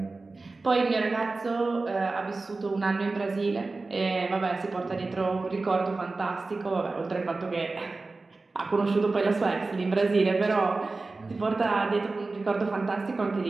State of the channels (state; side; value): quieter; left; 3.6 dB